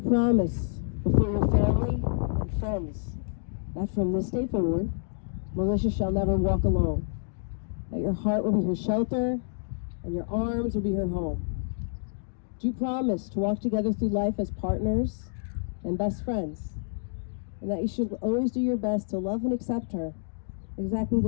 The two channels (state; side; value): silent; right; digital silence